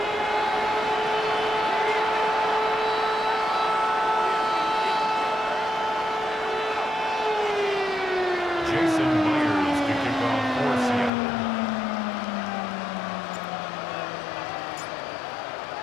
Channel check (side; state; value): right; drops out; at 11.1 s